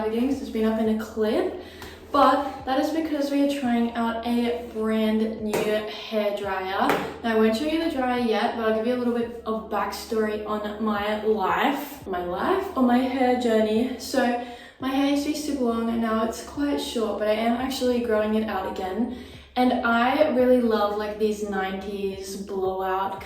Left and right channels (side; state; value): both; identical; correlation 1.00